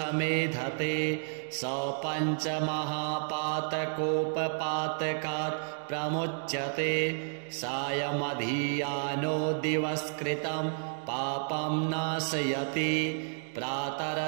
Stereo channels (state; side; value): silent; left; digital silence